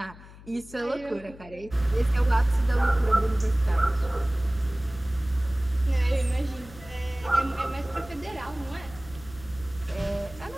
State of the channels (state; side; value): noise; left; hum, 19 dB below the sound